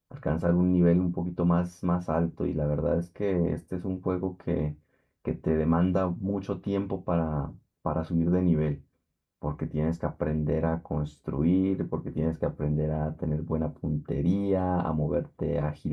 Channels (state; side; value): identical; both; correlation 1.00